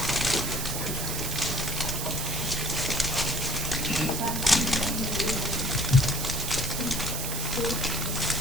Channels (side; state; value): right; noise; hiss, 3 dB below the sound